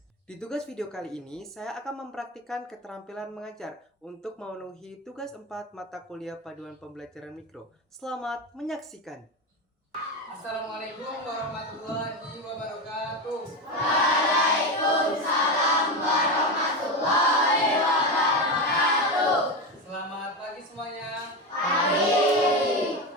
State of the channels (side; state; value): both; normal; correlation 0.17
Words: Di tugas video kali ini, saya akan mempraktikkan keterampilan mengajar untuk memenuhi tugas 4 mata kuliah paduan pembelajaran mikro. Selamat menyaksikan! Assalamualaikum warahmatullahi wabarakatuh. Waalaikumsalam warahmatullahi wabarakatuh. Selamat pagi semuanya. Pagi.